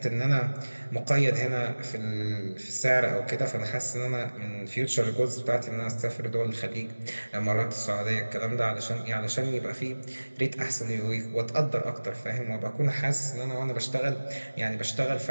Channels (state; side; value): inverted; both; correlation -1.00